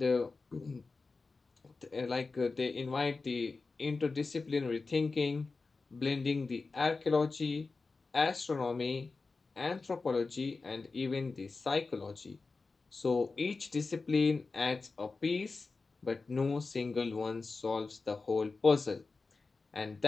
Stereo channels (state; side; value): quieter; right; 4.0 dB